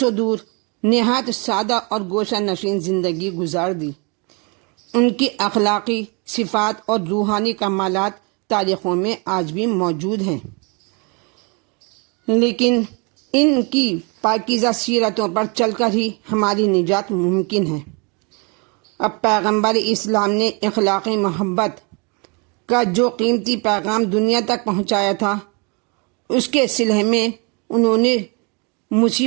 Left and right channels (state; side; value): quieter; left; 32.2 dB